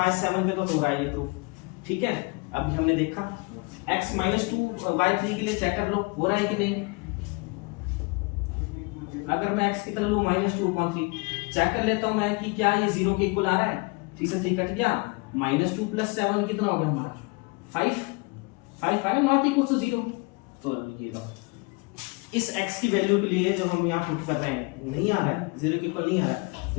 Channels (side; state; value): right; quieter; 28.7 dB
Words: 7 पे तो हो रहा है ये प्रूफ। ठीक है, अभी हमने देखा x - 2 y 3 के लिए चेक कर लो हो रहा है कि नहीं। अगर मैं x कितना लूं, -2/3, चेक कर लेता हूं मैं कि क्या ये 0 के इक्वल आ रहा है। 3 से 3 कट गया, -2 + 7 कितना हो गया हमारा, 5, 5 नॉट इक्वल टू 0। तो ये लो, इस x की वैल्यू के लिए जो हम यहाँ पुट कर रहे हैं नहीं आ रहा है, 0 के इक्वल नहीं आ रहा है,